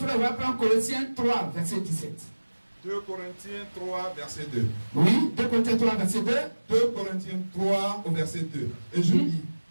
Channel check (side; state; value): both; inverted; correlation -1.00